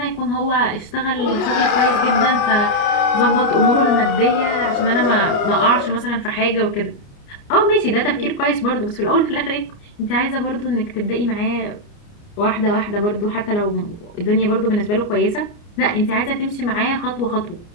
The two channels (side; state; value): right; late; 29 ms